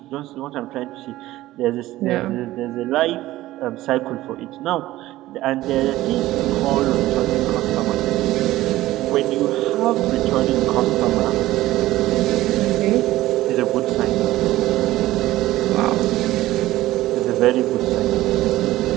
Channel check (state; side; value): quieter; left; 16.3 dB